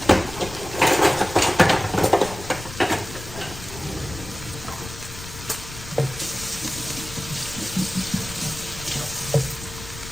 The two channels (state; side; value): noise; left; rumble, 13 dB below the sound